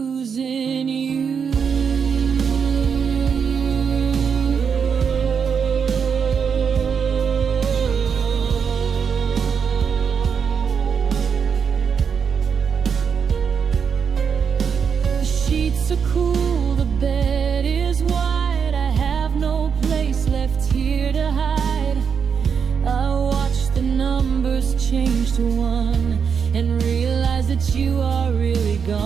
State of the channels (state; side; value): quieter; left; 6.6 dB